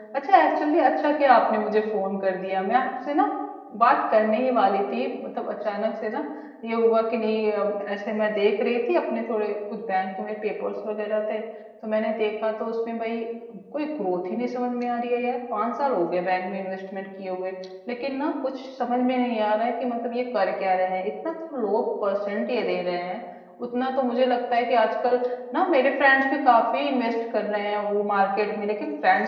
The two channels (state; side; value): identical; both; correlation 1.00